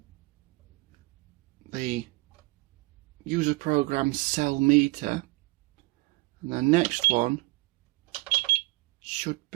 the user program cell meter, and the next one should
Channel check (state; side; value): quieter; left; 23.3 dB